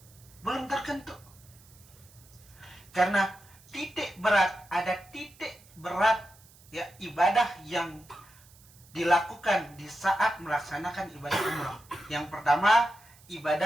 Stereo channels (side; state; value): right; noise; hiss, 25 dB below the sound